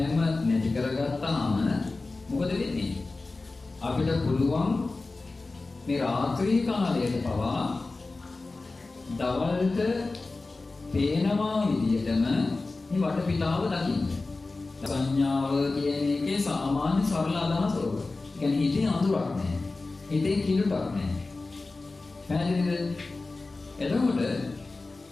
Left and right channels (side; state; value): right; quieter; 3.5 dB